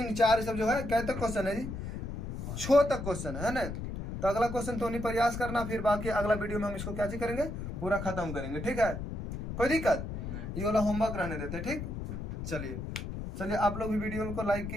4 सब जो है क्या तक क्वेश्चन है जी, 6 तक क्वेश्चन है ना। तो अगला क्वेश्चन तो नहीं प्रयास करना, फिर बाकी अगला वीडियो में हम इसको क्या करेंगे पूरा खत्म करेंगे, ठीक है। कोई दिक्कत, ये वाला होमवर्क रहने देते, ठीक। चलिए आप लोग भी वीडियो को लाइक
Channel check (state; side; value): noise; left; rumble, 6 dB below the sound